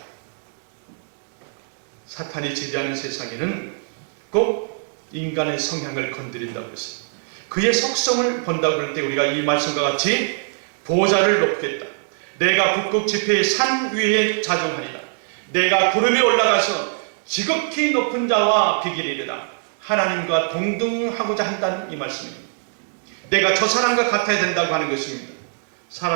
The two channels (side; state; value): left; silent; digital silence